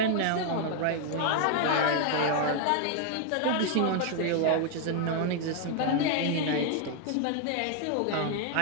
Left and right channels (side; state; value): both; different; correlation 0.00